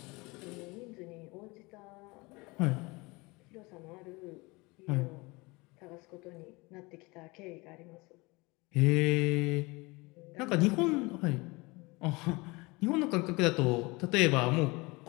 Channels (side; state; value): right; quieter; 24.8 dB